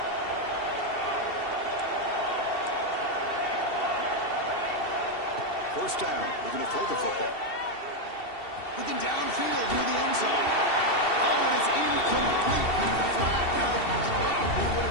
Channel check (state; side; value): late; right; 2.7 ms